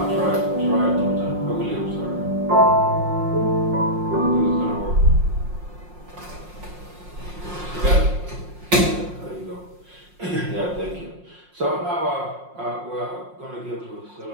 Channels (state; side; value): late; left; 5.6 ms